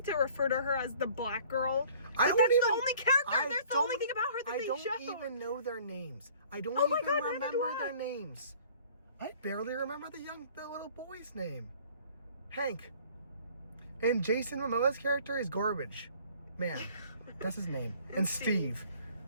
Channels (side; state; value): both; inverted; correlation -0.53